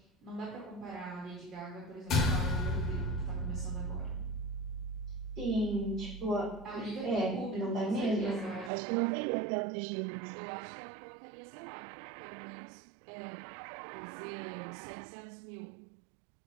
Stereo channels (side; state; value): left; drops out; at 8.7 s